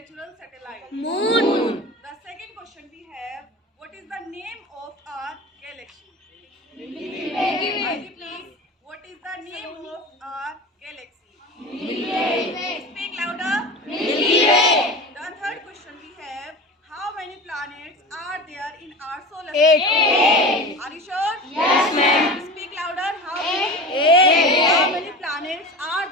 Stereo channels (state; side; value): normal; both; correlation 0.32